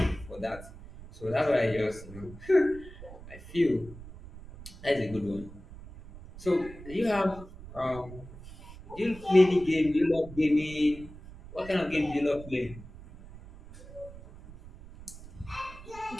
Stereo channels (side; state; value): right; noise; rumble, 16 dB below the sound